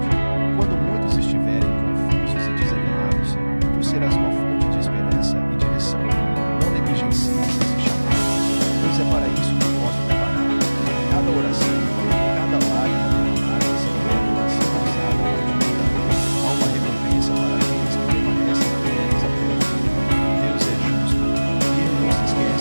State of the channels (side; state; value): both; inverted; correlation -1.00